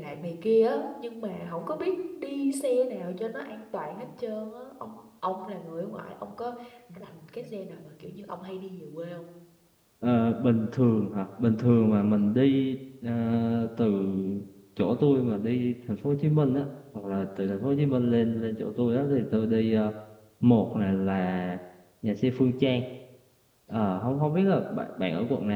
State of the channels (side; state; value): both; identical; correlation 1.00